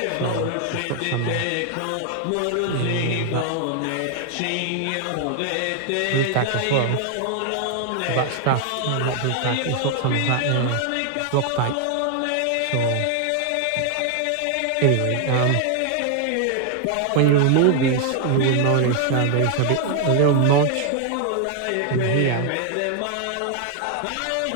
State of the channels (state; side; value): different; both; correlation 0.00